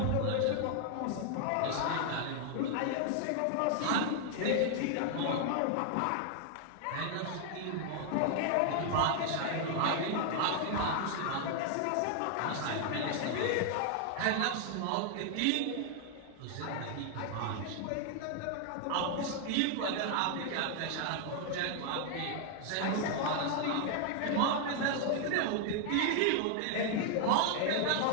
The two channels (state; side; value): different; both; correlation 0.00